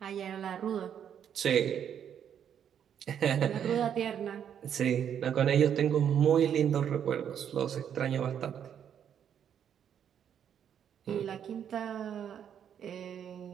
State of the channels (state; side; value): quieter; left; 8.8 dB